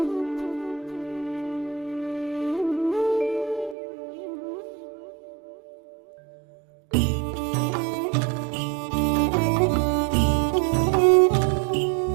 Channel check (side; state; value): left; drops out; at 3.8 s